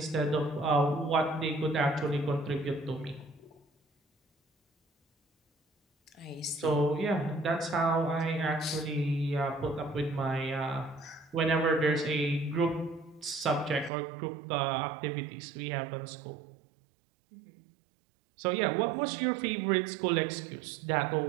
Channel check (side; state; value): left; drops out; at 13.9 s